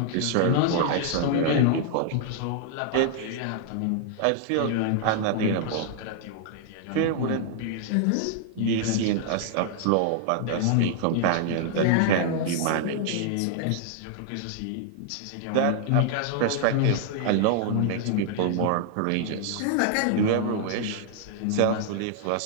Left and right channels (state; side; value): different; both; correlation -0.01